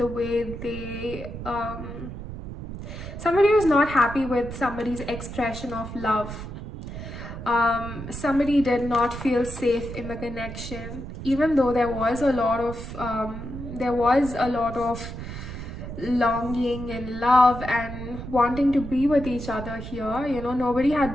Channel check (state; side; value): noise; right; rumble, 9 dB below the sound